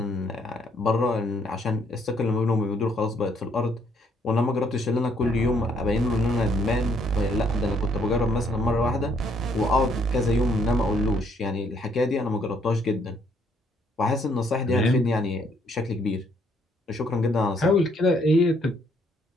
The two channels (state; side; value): normal; both; correlation 0.68